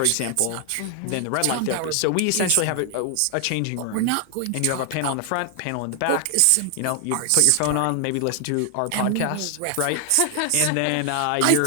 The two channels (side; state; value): both; different; correlation 0.00